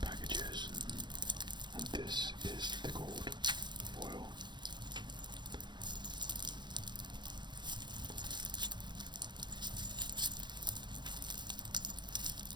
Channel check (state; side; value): late; left; 0.22 ms